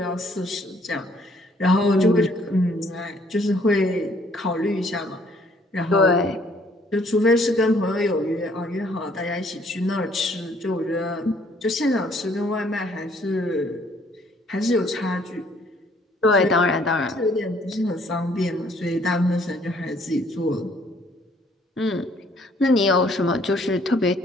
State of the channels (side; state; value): both; normal; correlation 0.63